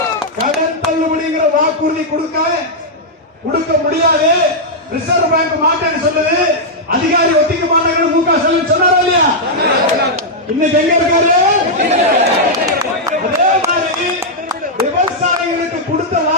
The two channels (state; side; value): normal; both; correlation -0.05